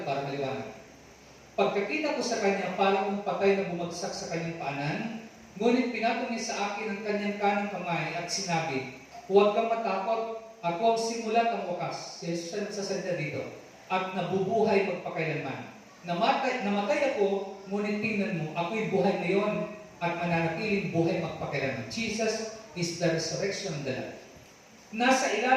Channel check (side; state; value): both; identical; correlation 1.00